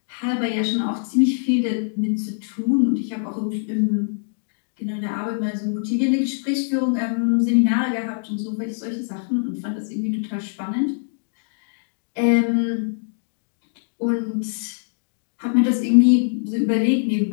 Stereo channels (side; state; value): right; silent; digital silence